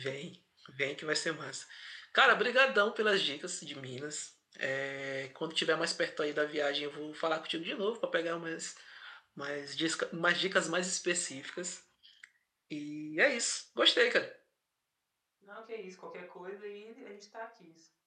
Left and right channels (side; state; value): both; identical; correlation 1.00